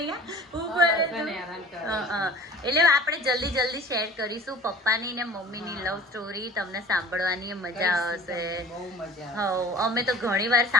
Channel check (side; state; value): both; normal; correlation 0.44